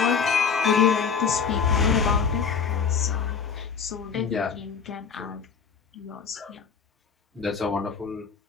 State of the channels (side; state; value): right; quieter; 6.1 dB